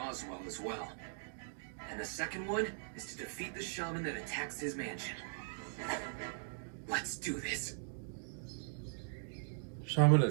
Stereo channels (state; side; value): silent; left; digital silence